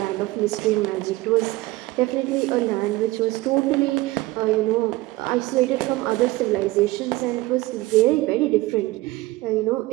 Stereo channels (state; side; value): quieter; left; 19.0 dB